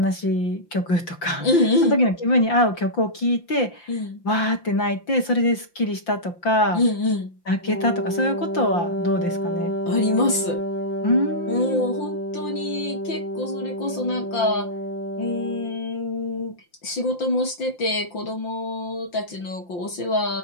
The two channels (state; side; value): late; right; 5.8 ms